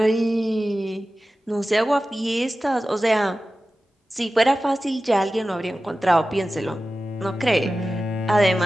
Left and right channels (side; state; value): both; normal; correlation 0.95